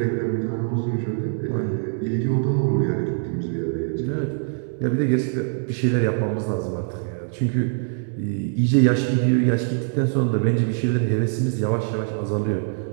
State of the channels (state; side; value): silent; left; digital silence